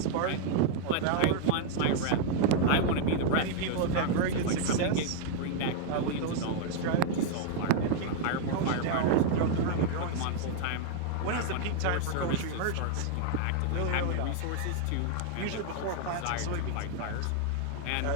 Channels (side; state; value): both; different; correlation 0.00